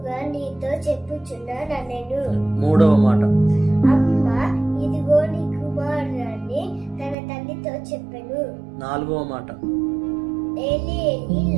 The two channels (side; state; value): left; drops out; at 7.2 s